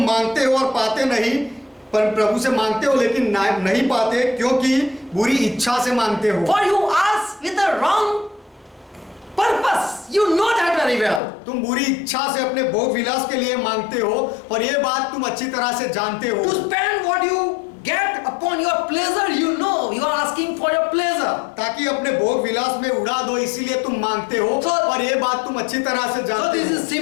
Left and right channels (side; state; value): right; drops out; at 11.2 s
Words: मांगते हो और पाते नहीं, पर प्रभु से मांगते हो लेकिन नहीं पाते क्योंकि बुरी इच्छा से मांगते हो। For you ask with the wrong purpose. You know that very well. तुम बुरी इच्छा से अपने भोग विलास के लिए मांगते हो और ये बात तुम अच्छी तरह से जानते हो। To spend what you get upon your pleasure, you know you are asking for your pleasure. ताकि अपने भोग विलास में उड़ा दो, इसीलिए तुम मांगते हो और ये बात तुम अच्छी तरह से So जानते this हो। is